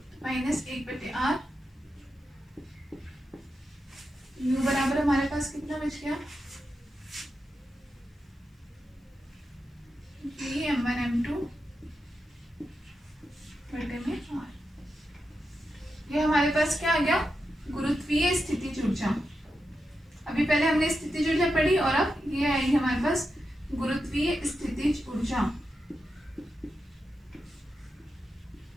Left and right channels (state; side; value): normal; both; correlation 0.88